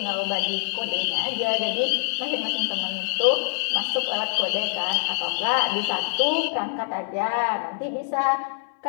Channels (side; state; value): right; silent; 62 dB below the other